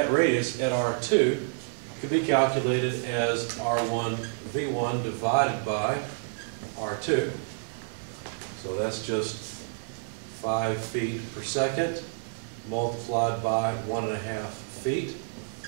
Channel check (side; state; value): left; silent; digital silence